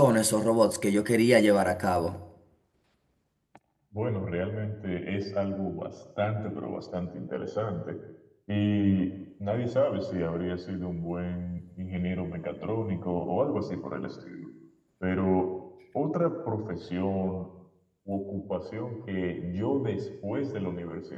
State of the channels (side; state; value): both; identical; correlation 1.00